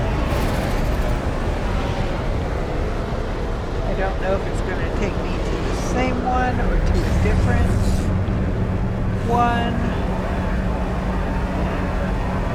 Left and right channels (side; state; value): both; identical; correlation 1.00